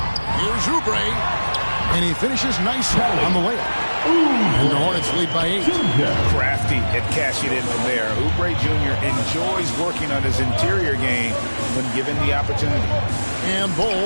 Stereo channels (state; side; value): inverted; both; correlation -1.00